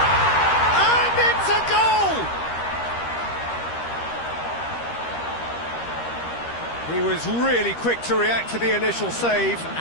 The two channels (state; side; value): late; right; 13 ms